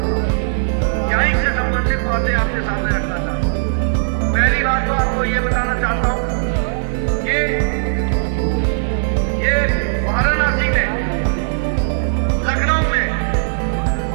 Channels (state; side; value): silent; left; digital silence